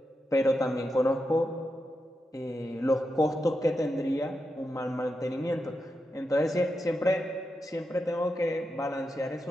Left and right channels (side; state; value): both; normal; correlation 0.87